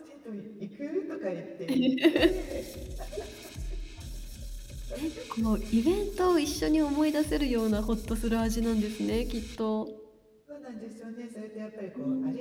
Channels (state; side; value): identical; both; correlation 1.00